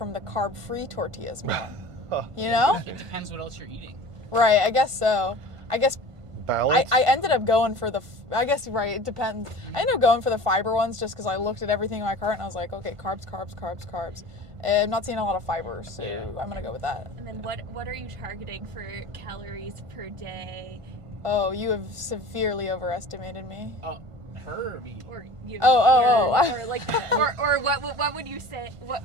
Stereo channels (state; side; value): late; left; 1.5 ms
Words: the carb-free tortillas more? You know? It depends what else you're eating. Right, I guess so. I guess balance. I ended up going for I guess, right, it depends. I ended up going for the fiber ones just because I looked at everything in my cart and I was like, okay, carbs, carbs, carbs, carbs. And I'm not seeing a lot of fiber, so I'm going to go with that. And then what are you targeting for calories per day? Oh, you have severely overestimated me. Oh, her or me? Or you? Or like, or what would you say? What